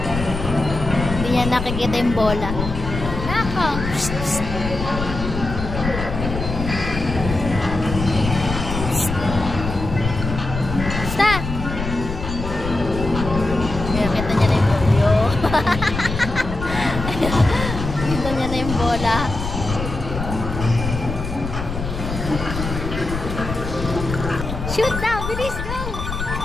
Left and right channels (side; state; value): left; noise; rumble, 5 dB below the sound